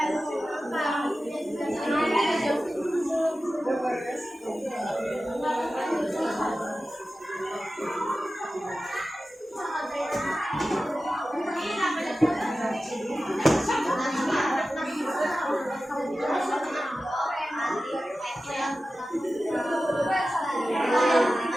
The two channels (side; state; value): both; normal; correlation 0.94